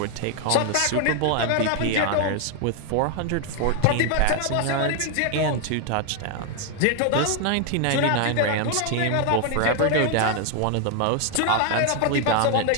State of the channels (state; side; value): different; both; correlation 0.00